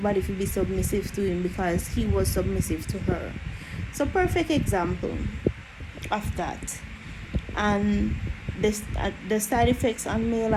to be submissive to him because he was submissive to her. So perfect example of that. And the side effects on male,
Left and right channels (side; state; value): both; identical; correlation 1.00